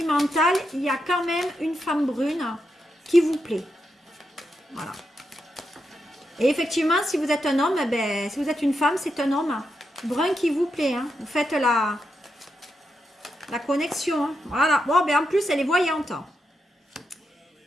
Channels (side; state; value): both; normal; correlation 0.85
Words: il y a quand même une femme brune qui vous plaît, voilà. Et effectivement, si vous êtes un homme, eh ben, si vous êtes une femme, c'est un homme brun qui vous plaît. Hein. Vous faites la connexion. Hein. Voilà. Bon, ben, en plus, elle est voyante.